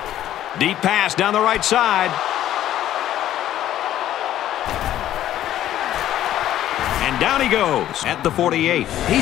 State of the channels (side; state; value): right; quieter; 12.4 dB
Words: Deep pass down the right side. And down he goes at the 48. He